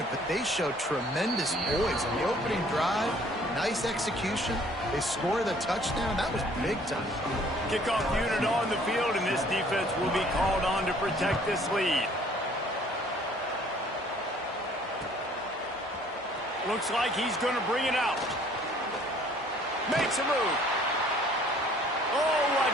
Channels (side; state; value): both; normal; correlation 0.57